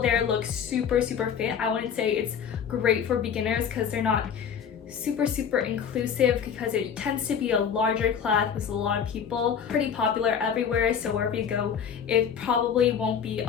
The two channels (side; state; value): right; quieter; 7.5 dB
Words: there look super fit. I wouldn't say it's great for beginners because they're not super inclusive, because it tends to be a larger class with a lot of people. Pretty popular everywhere, so wherever you go, it probably won't be